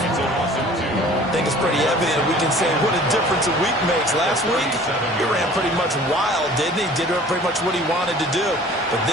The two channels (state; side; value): normal; both; correlation 0.48